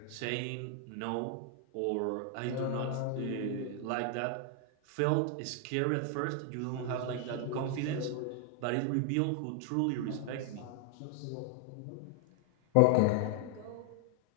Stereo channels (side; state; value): both; different; correlation 0.00